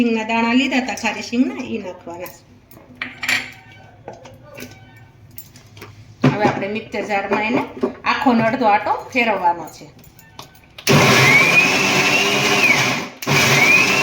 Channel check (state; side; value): identical; both; correlation 1.00